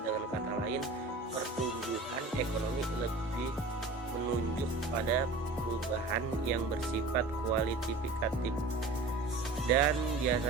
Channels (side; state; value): left; quieter; 3.3 dB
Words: Dengan kata lain, pertumbuhan ekonomi lebih menunjuk pada perubahan yang bersifat kualitatif dan